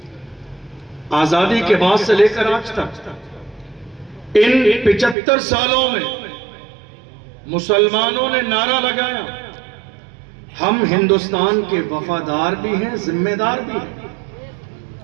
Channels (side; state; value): left; drops out; at 5.2 s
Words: آزادی کے بعد سے لے کر آج تک ان 75 سالوں میں مسلمانوں نے نعرہ لگایا، ہم ہندوستان کے وفادار بھی ہیں، ذمہ دار بھی ہیں،